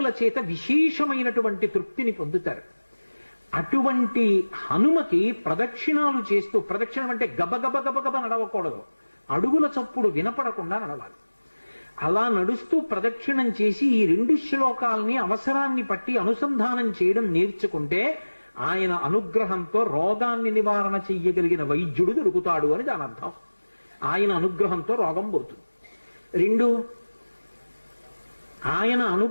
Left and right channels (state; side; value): inverted; both; correlation -1.00